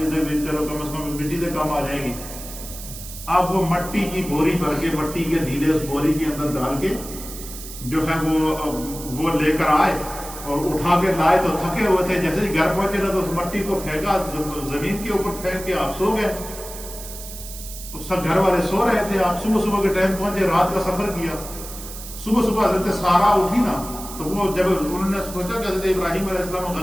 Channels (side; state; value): right; noise; hiss, 12 dB below the sound